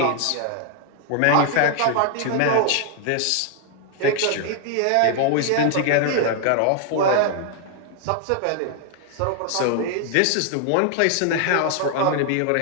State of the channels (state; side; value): different; both; correlation 0.00